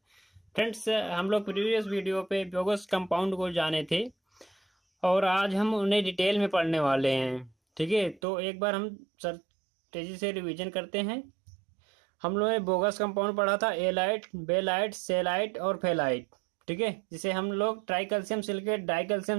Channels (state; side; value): drops out; left; at 8.2 s